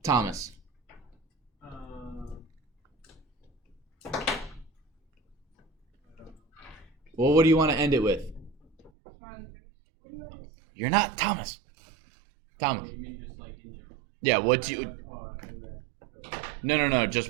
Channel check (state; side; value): drops out; left; at 8.9 s